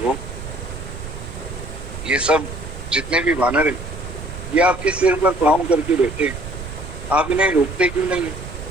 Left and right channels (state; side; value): noise; right; rumble, 10 dB below the sound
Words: ये सब जितने भी वानर हैं ये आपके सिर पर पांव करके बैठे, आप इन्हें रोकते क्यों नहीं?